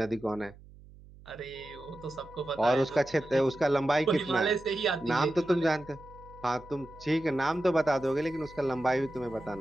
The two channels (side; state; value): right; noise; hum, 21 dB below the sound